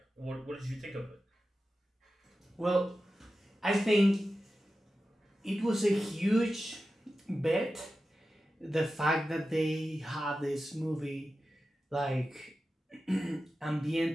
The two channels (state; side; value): normal; both; correlation 0.93